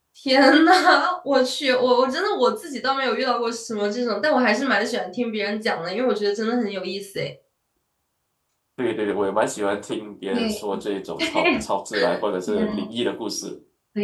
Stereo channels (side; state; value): both; identical; correlation 1.00